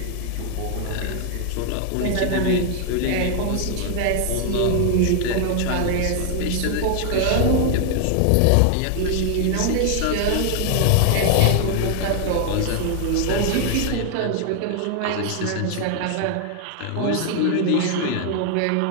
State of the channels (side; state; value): both; different; correlation 0.00